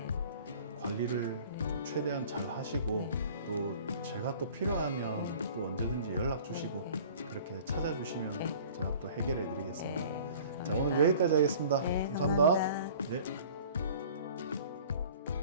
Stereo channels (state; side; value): inverted; both; correlation -0.47